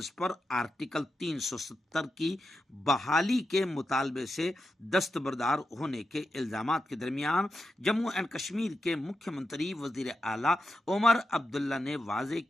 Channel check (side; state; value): both; normal; correlation 0.88